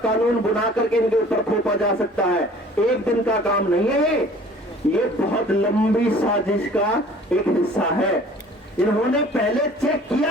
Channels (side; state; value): both; normal; correlation 0.50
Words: बना करके इनके ऊपर थोपा जा सकता है। एक दिन का काम नहीं है ये बहुत लंबी साजिश का एक हिस्सा है। इन्होंने पहले चेक किया